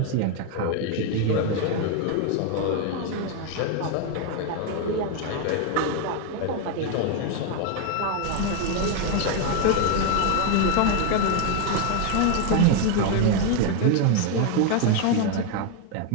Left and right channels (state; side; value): different; both; correlation 0.01